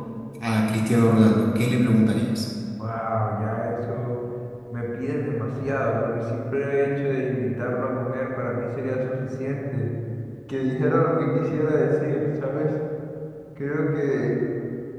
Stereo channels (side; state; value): both; identical; correlation 1.00